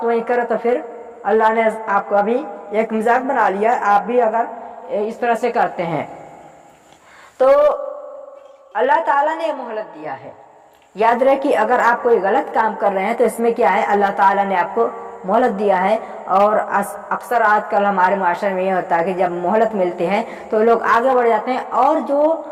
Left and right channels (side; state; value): both; identical; correlation 1.00